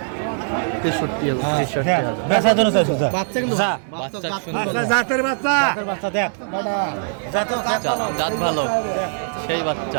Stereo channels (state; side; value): silent; left; digital silence